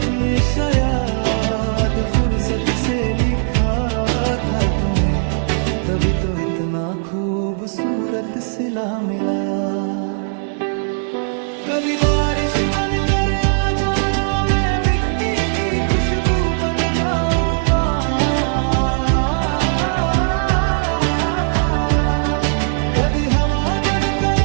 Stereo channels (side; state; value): left; silent; 67 dB below the other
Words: ने शायद फुर्सत से लिखा था तुम्हें, तभी तो इतना खूबसूरत सिला मिला। कभी बारिश बनकर आ जाना, मैं मिट्टी की खुशबू बन जाऊंगा। कभी हवा बनकर